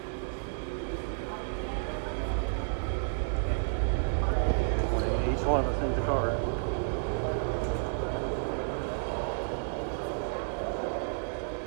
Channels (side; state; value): left; silent; digital silence